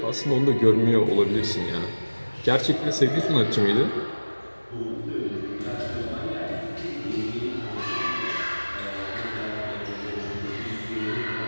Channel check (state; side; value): inverted; both; correlation -1.00